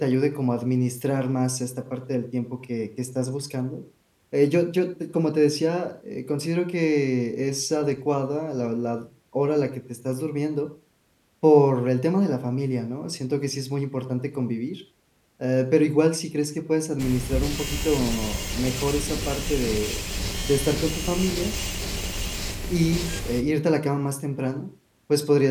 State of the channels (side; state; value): both; identical; correlation 1.00